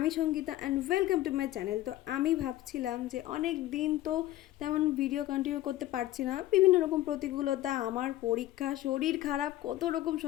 Sangeeta and welcome to my channel. তো আমি ভাবছিলাম যে অনেক দিন তো তেমন ভিডিও কন্টিনিউ করতে পারছি না, বিভিন্ন রকম প্রতিকূলতা, আমার পরীক্ষা, শরীর খারাপ, কত রকম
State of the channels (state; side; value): quieter; right; 15.1 dB